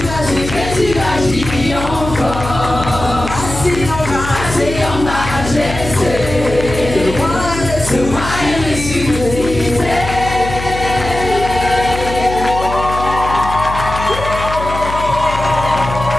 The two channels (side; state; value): left; noise; hum, 8 dB below the sound